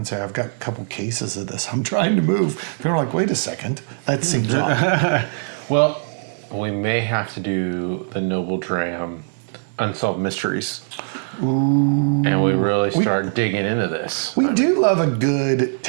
say, I've got a couple cases of this I'm trying to move. People are like, wait a second, that seems odd. Well, we may have to do the Noble Dram Unsolved Mysteries. Ooh. And we really start digging into this. We do love a good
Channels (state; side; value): silent; left; 64 dB below the other